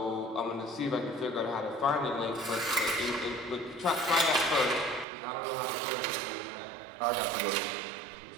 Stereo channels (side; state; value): left; drops out; at 5.1 s